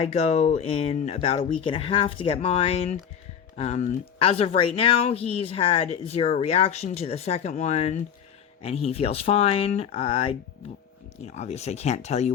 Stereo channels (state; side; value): quieter; right; 8.2 dB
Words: go in about a week and a half to get mine. As of right now, he's had zero reaction to the second one, and he feels fine. Obviously I can't tell you